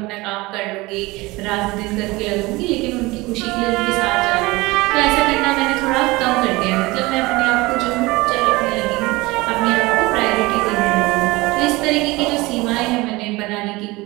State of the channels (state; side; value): quieter; left; 22.0 dB